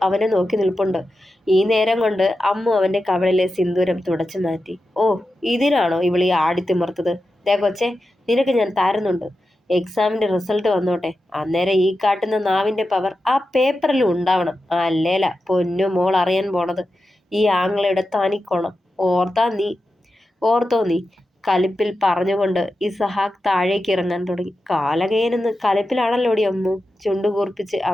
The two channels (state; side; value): normal; both; correlation 0.91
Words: അവനെ നോക്കി നിൽപ്പുണ്ട്. ഈ നേരം കൊണ്ട് അമ്മു അവൻ്റെ കവളിലെ സിന്ദൂരം തുടച്ചു മാറ്റി. ഓ, ഇതിനാണോ ഇവളീ ആടിത്തിമർത്തത്? ദേ കൊച്ചേ, നിനക്ക് ഞാൻ തരുന്നുണ്ട്. എക്സാമിൻ്റെ റിസൾട്ട് വന്നോട്ടെ, അന്നേരം ഈ കാട്ടുന്ന നാവിൻ്റെ പവർ ആ പേപ്പറിലും ഉണ്ടാവണം. അല്ലേല പൊന്നു മോൾ അറിയാൻ പോണത് ഈ ആങ്ങളയുടെ തനിക്കോണം. ഓർത്തോ നീ? കലിപ്പിൽ പറഞ്ഞുകൊണ്ട് ഇസഹാക്ക് താഴേക്ക് ഇറങ്ങാൻ തുടങ്ങി. കാലകയനെന്ന് കലിപ്പിലാണല്ലോടി അമ്മു. ചുണ്ടുകൂർപ്പിച്ച്